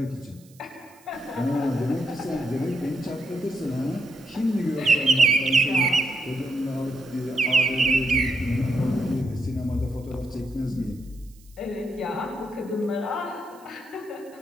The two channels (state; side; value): noise; right; hiss, 28 dB below the sound